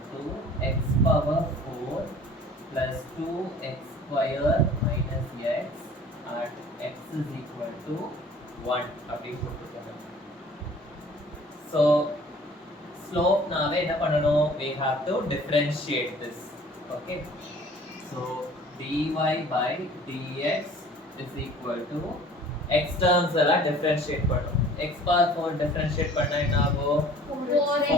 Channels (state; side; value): normal; both; correlation 0.50